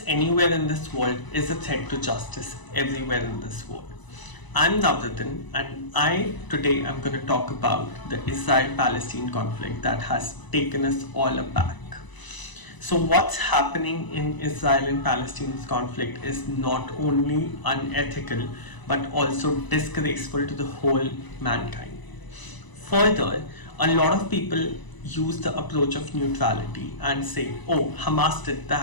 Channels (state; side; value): late; right; 1.0 ms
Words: anywhere in this world is a threat to justice everywhere in this world. I'm Navratin, and I today am going to talk about the Israel-Palestine conflict that has taken us all aback. So what's happening in Israel and Palestine's conflict is not only unethical but also disgraceful to the whole mankind. Further, a lot of people use the approach of neutrality and say, oh, Hamas did